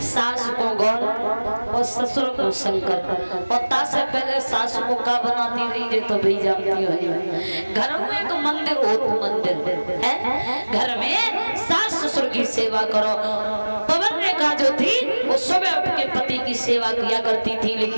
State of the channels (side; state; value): both; inverted; correlation -1.00